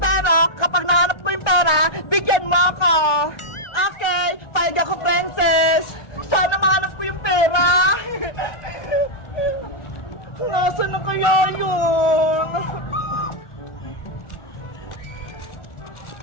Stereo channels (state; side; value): late; right; 1.4 ms